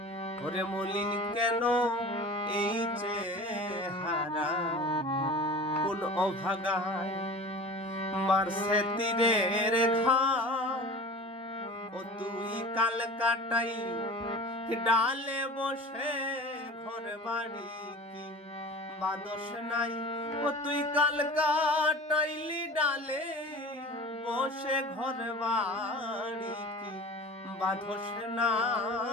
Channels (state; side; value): normal; both; correlation 0.37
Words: ওরে মলিন কেন এই চেহারা কোন অভাগায় মারছে তীরের ঘাম ও তুই কাল কাটাই ডালে বসে ঘর বাড়ি কি বাদস নাই ও তুই কাল কাটাইলি ডালে বসে ঘর বাড়ি কি বাদস